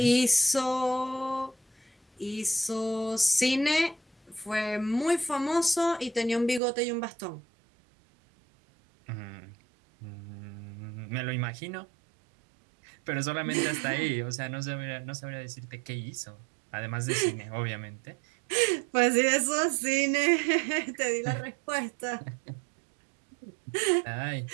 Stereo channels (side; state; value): left; drops out; at 6.6 s